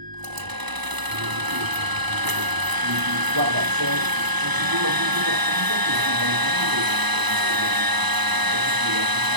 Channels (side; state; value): left; late; 1.0 ms